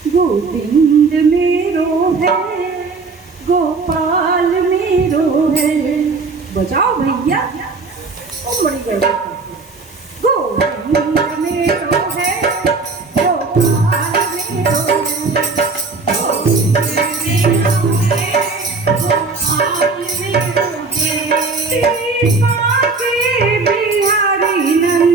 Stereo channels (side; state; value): left; quieter; 4.1 dB